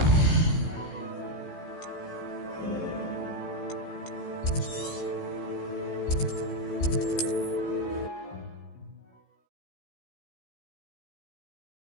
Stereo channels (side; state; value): right; late; 16 ms